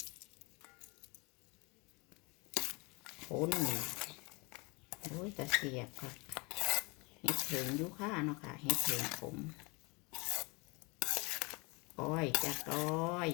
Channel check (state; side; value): quieter; right; 28.0 dB